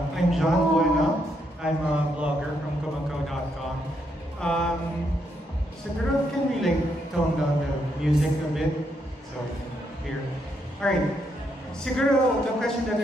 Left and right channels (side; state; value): both; normal; correlation 0.77